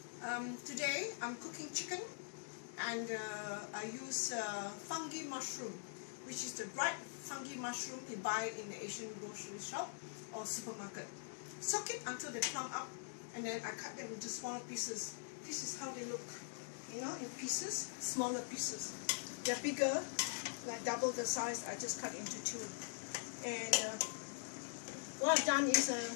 Today I'm cooking chicken, and I use fungi mushroom, which is the dried fungi mushroom you buy in the Asian grocery shop or supermarket. Soak it until they plump up, and then I cut them into smaller pieces. This is how they look, you know, in pieces, smaller pieces. They're bigger, like double the size. I just cut into two. And what I've done is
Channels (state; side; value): silent; right; digital silence